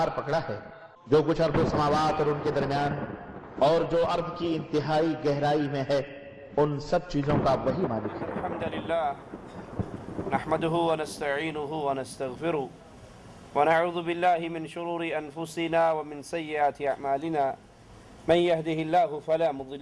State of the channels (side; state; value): both; identical; correlation 1.00